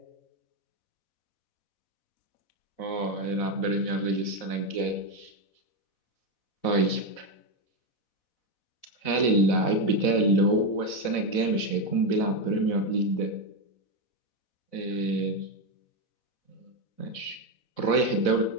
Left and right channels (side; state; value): right; late; 4.0 ms